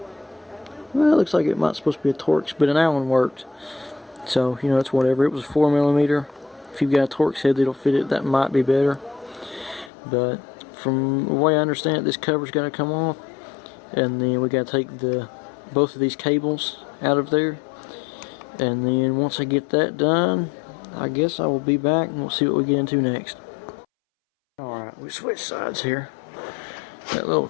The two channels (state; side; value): drops out; right; at 9.9 s